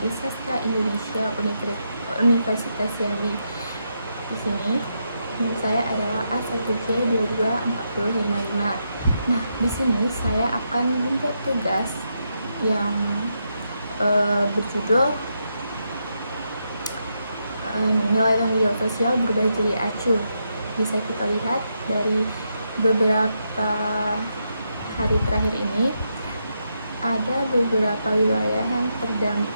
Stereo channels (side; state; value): both; inverted; correlation -0.82